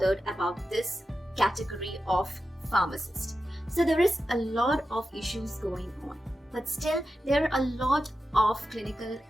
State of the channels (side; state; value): both; normal; correlation 0.91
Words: about this category of pharmacist. So there is a lot of issues going on, but still there are a lot of clinical